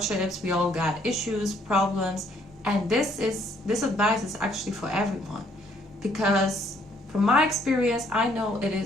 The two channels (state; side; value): normal; both; correlation 0.66